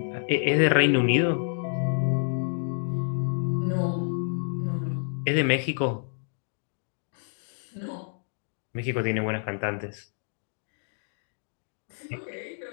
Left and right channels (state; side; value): silent; right; digital silence